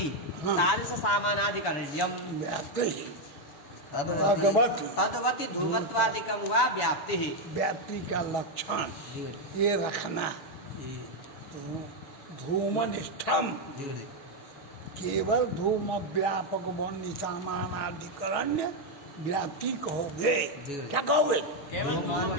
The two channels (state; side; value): late; right; 6.4 ms